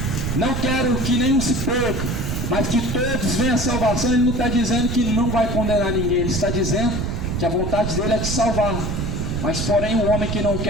não quero que nenhum se perca, mas que todos venham à salvação, ele não está dizendo que não vai condenar ninguém. Ele está dizendo que a vontade dele é te salvar. Mas porém o homem que não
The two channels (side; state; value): right; noise; rumble, 2 dB below the sound